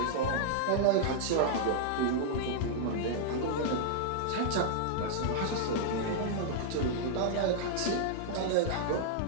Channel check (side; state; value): both; different; correlation -0.01